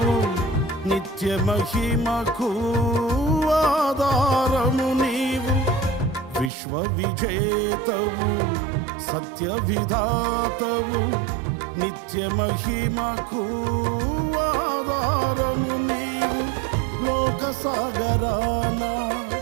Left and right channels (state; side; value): drops out; left; at 6.5 s